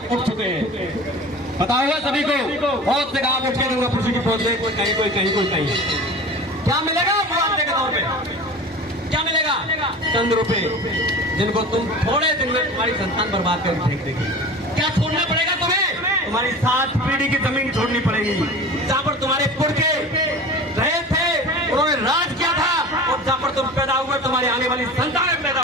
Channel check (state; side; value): normal; both; correlation 0.36